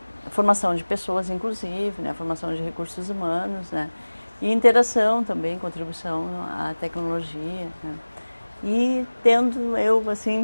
formação de pessoas, inclusive, né? A formação de recursos humanos, né? E interação também, contribuição à tecnologia, né? E tendo eu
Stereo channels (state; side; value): inverted; both; correlation -1.00